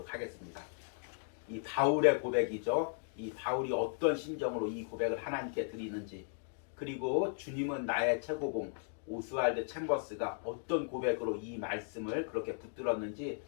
하겠습니다. 이 바울의 고백이죠. 이 바울이 어떤 심정으로 이 고백을 하나님께 드리는지, 그리고 주님은 나의 최고봉 오스왈드 챔버스가 어떤 고백으로 이 말씀을 그렇게 붙들었는지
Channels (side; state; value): right; silent; digital silence